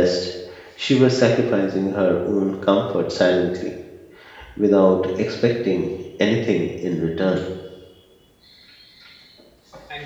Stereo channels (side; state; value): both; identical; correlation 1.00